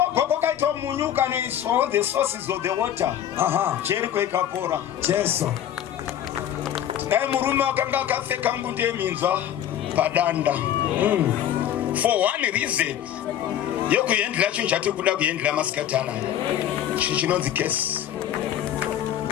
kwakaitwa munyuka neiswa the sources of the water. Jericho ikapora. Jesu. Dai murume akanga akapfeka ngude yeminzwa padanda. For one reason. Yokuendela chinhu chati kuda kuendela masikati anaya. Chinonzi case.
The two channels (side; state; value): right; quieter; 10.8 dB